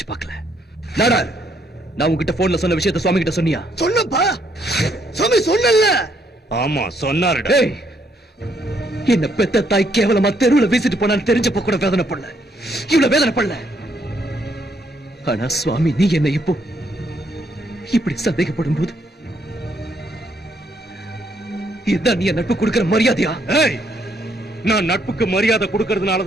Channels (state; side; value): normal; both; correlation 0.72